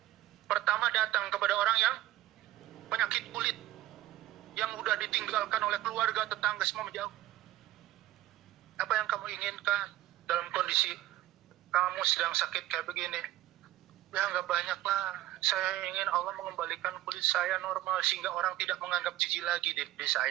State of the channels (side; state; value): left; quieter; 15.4 dB